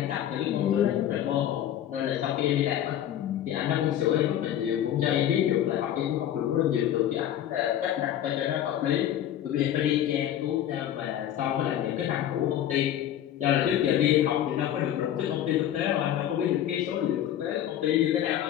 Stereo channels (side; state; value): right; quieter; 11.2 dB